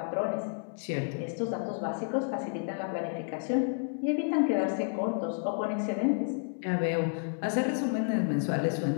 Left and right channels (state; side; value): silent; right; 57 dB below the other